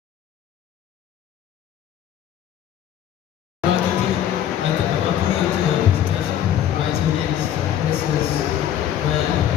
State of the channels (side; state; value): right; quieter; 10.5 dB